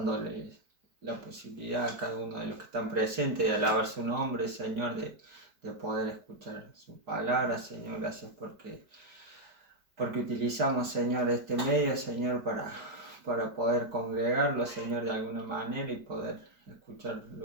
la posibilidad a cada uno de los que están presentes de alabar su nombre, Señor, de poder escuchar su palabra, Señor. Gracias porque utilizamos, Señor, este medio, Señor, para poder congregarlo, Señor, de alguna manera y poder escuchar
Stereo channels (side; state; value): left; late; 4.8 ms